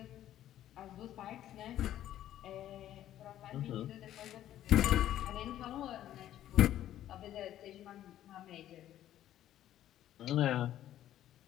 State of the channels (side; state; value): right; quieter; 12.3 dB